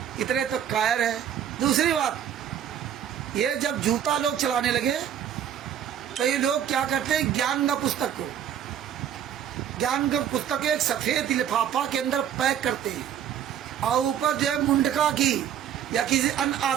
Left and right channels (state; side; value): quieter; left; 9.5 dB